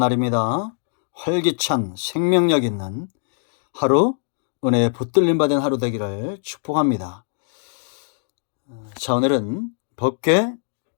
활기찬 생명력 있는 하루, 은혜에 붙들림 받은 하루 되기를 축복합니다. 자, 오늘은 법궤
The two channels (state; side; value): silent; right; digital silence